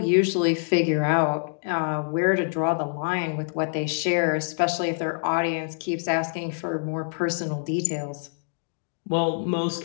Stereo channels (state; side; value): silent; right; digital silence